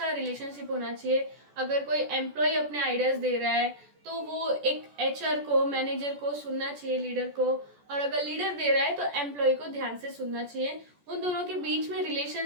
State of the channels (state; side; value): late; left; 14 ms